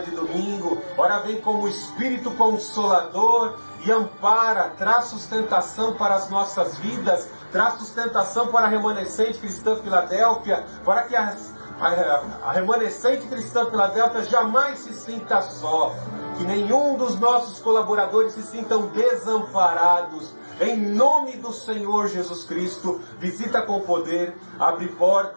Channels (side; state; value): both; inverted; correlation -1.00